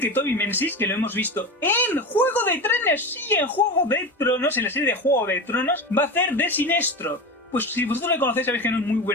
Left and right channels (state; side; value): normal; both; correlation 0.25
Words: que Toby Menzies, que lo hemos visto en Juego de Tronos, sí, en Juego de Tronos, en la serie de Juego de Tronos, va a hacer de Sinestro. Pues si vosotros le conocéis sabéis que no es muy